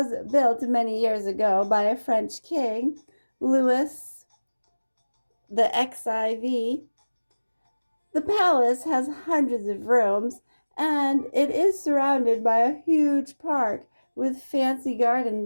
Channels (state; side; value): inverted; both; correlation -1.00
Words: built many years ago by a French king, Louis the XIV. The palace has hundreds of rooms, and it is surrounded by a huge park with fancy